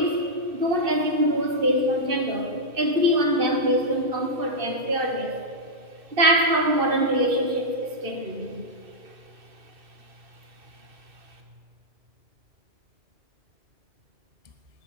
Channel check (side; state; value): left; late; 2.6 ms